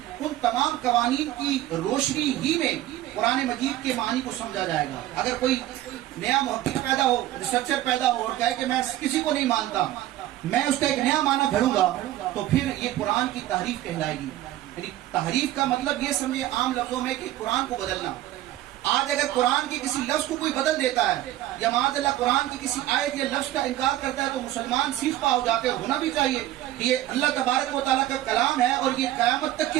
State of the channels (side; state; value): left; quieter; 14.2 dB